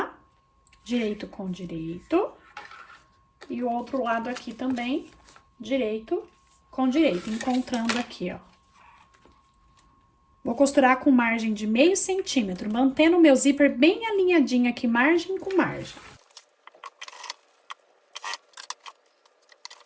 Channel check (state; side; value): identical; both; correlation 1.00